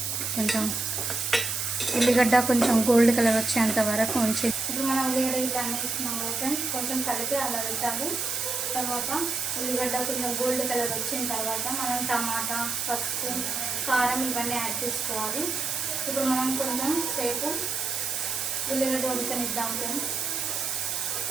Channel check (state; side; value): noise; right; hiss, 2 dB below the sound